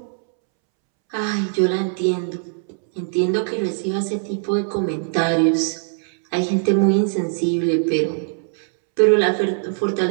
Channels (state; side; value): silent; left; 65 dB below the other